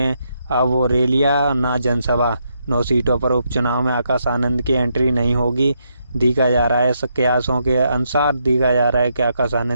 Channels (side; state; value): both; inverted; correlation -0.79